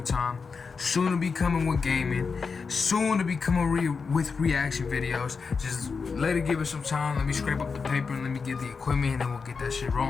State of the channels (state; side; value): quieter; right; 5.1 dB